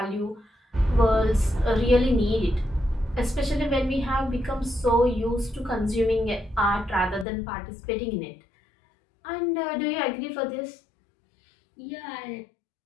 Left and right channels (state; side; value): drops out; right; at 7.2 s